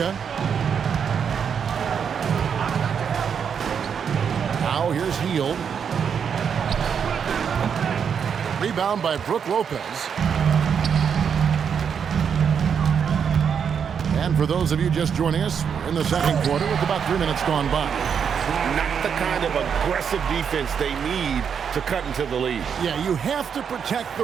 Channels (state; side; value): quieter; left; 7.2 dB